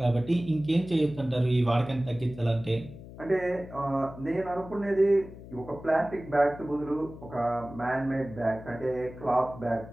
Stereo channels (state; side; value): noise; left; hum, 15 dB below the sound